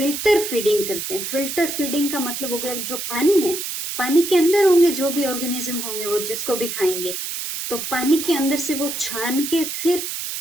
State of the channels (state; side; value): noise; right; hiss, 5 dB below the sound